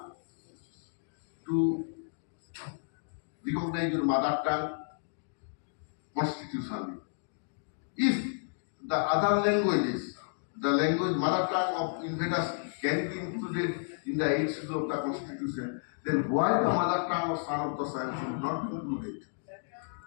to recognize your mother tongue constitutionally. If the other languages the language mother tongue of invaders can be included in the 8th schedule of the constitution, then why the mother tongue of son of the soil should not be included?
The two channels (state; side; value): silent; right; digital silence